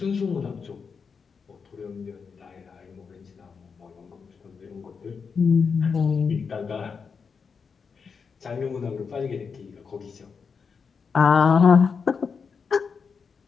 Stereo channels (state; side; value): quieter; right; 5.7 dB